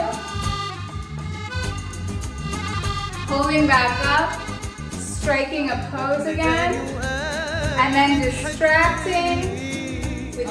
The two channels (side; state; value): both; identical; correlation 1.00